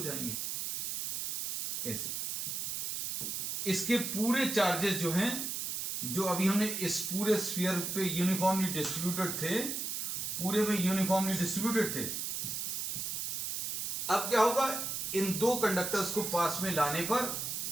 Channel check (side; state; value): right; noise; hiss, 2 dB below the sound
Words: जाएंगे, ऐसे। इसके पूरे चार्जेस जो हैं, जो अभी हमने इस पूरे स्फीयर पे यूनिफॉर्मली डिस्ट्रीब्यूटेड थे, पूरे में यूनिफॉर्मली डिस्ट्रीब्यूटेड थे, अब क्या होगा, इन 2 कंडक्टर्स को पास में लाने पर